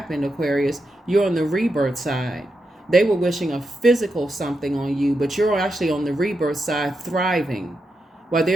Aquarius. You're on the rebirth side. They were wishing a physical something on you, but you're actually on the rebirth side thriving while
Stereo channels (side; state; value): both; normal; correlation 0.86